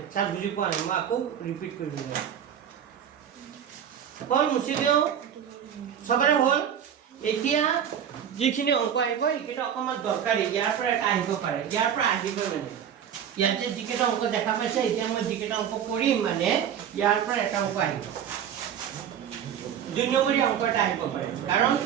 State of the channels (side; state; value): left; quieter; 8.9 dB